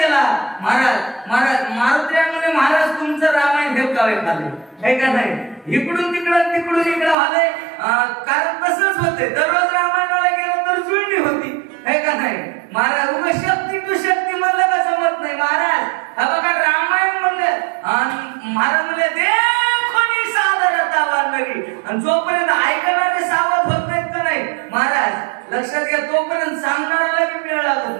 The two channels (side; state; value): left; drops out; at 7.2 s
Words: महाराज मारुतीने महाराज तुमचं रामायण हेपकावे खाले हे का नाही इकडून तिकडं झाले कारण तसंच होते दररोज रामायणाला गेलं तर जुळणी होती हे का नाही महाराज उगा शक्ती तू शक्ती म्हणलं का जमत नाही महाराज। हा बघा रामायण म्हणलं महाराज म्हणले देखोनी सादरता वानरी आणि जोपर्यंत ऐकणारे सावध होत नाहीत का नाही महाराज लक्षात घ्या तोपर्यंत सांगणाऱ्याला बी वेळ